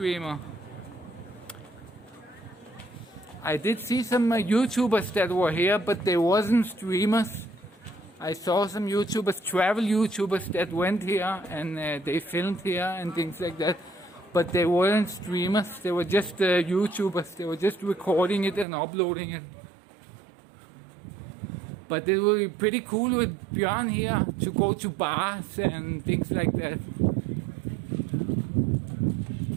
I did see some YouTubers that were here, but they wasn't streamers. I saw some YouTubers, travel YouTubers that went here and they filmed here and things like that. But they weren't streamers, they were just YouTubers. They were just recording it and uploading it. But it will be pretty cool with Björn here to go to bars and things like that.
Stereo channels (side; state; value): left; drops out; at 18.7 s